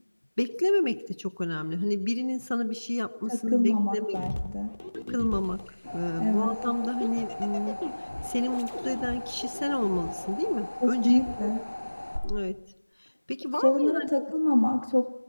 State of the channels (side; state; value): both; inverted; correlation -1.00